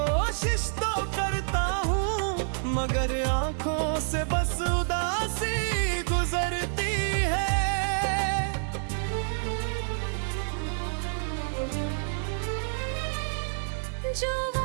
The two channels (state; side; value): silent; left; digital silence